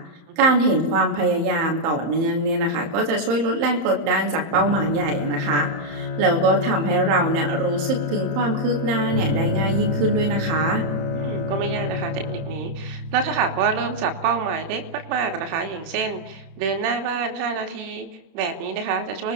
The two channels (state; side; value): late; left; 31 ms